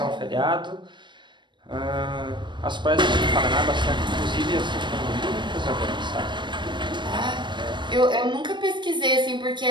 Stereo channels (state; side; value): late; left; 0.22 ms